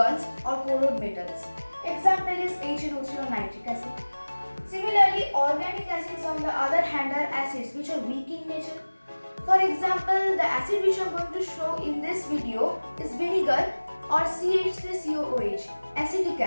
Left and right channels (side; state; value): both; inverted; correlation -1.00